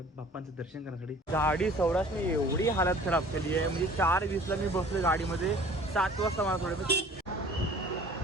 बाप्पांचं दर्शन करण्यासाठी. गाडी सौराष्ट्रने एवढी हालत खराब केली आहे, म्हणजे 4:20ला मी बसलोय गाडीमध्ये, 7 वाजता मला थोडं.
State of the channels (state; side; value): normal; both; correlation 0.49